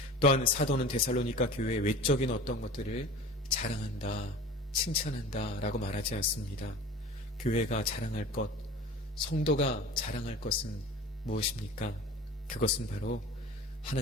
또한 사도는 데살로니가 교회의 외적인 어떤 것들을 자랑한다, 칭찬한다 라고 말하지 않습니다. 교회가 자랑할 것, 성도가 자랑할 것은 무엇입니까? 그것은 바로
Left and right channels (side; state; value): both; normal; correlation 0.38